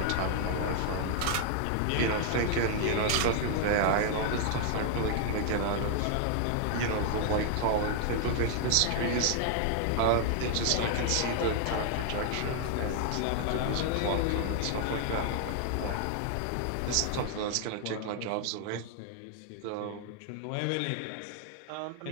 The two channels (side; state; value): both; different; correlation 0.00